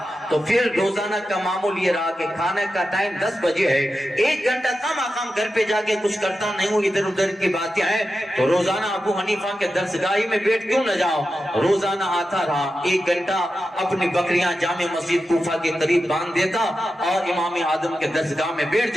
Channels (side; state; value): both; normal; correlation 0.91